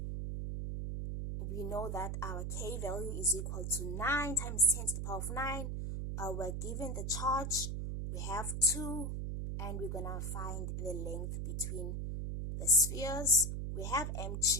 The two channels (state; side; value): noise; right; hum, 3 dB below the sound